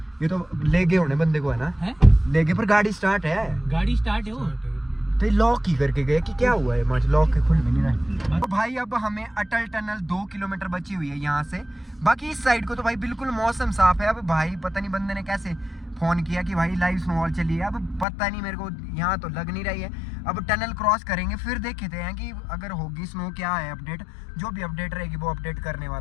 ये तो ले गए होने बंदे को है ना, ले गए पर गाड़ी स्टार्ट है, गाड़ी स्टार्ट है वो तो लॉक ही करके गए कि क्या हुआ है, मच लॉक के खुल में नहीं रहा। तो भाई अब हमें अटल टनल 2 किलोमीटर बची हुई है यहाँ से। बाकी इस साइड को तो भाई बिल्कुल मौसम साफ है। अब भाई पता नहीं बंदे ने कैसे फ़ोन किया कि भाई लाइव स्नोफॉल चली है, अब पता नहीं मेरे को, यहाँ तो लग नहीं रही है। अब टनल क्रॉस करेंगे फिर देखते हैं कि अगर होगी स्नो क्या है अपडेट, जो भी अपडेट रहेगी वो अपडेट करने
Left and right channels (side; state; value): right; drops out; at 18.1 s